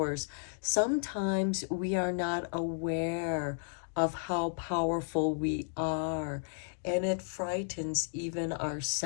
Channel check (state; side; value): silent; right; digital silence